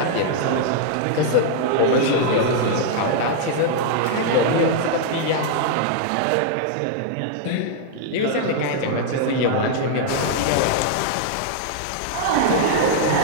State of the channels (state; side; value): different; both; correlation -0.01